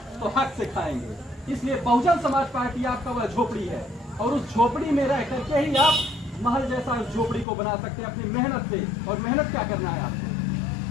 तो हक से खाएंगे। इसलिए बहुजन समाज पार्टी आपका वह झोपड़ी है, और उस झोपड़ी में रह करके ही आप महल जैसा उस झोपड़ी को बना सकते हैं अपनी मेहनत से। और मेहनत क्या करना है आपको?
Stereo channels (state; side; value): drops out; right; at 7.5 s